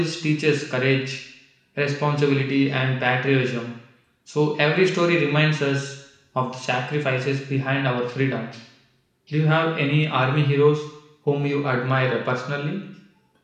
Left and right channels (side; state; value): both; identical; correlation 1.00